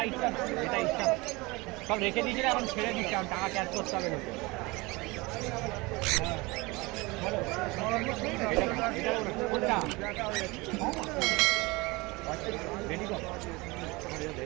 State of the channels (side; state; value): left; quieter; 23.9 dB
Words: ইচ্ছা না, এটা ইচ্ছা না, সব রেখে দিয়েছিল, এখন ছেড়ে দিচ্ছে, এখন টাকা ক্যাশ করতে হবে লোকে। কোনটা রেডি কর,